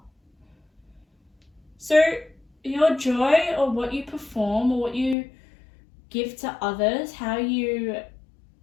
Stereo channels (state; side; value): drops out; right; at 5.2 s